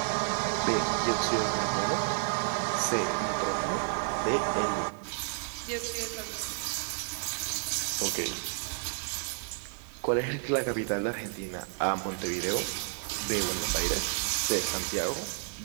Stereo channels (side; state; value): left; silent; 57 dB below the other